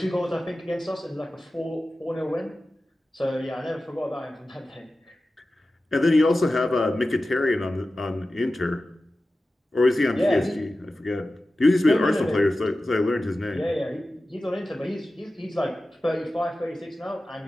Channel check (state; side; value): normal; both; correlation 0.94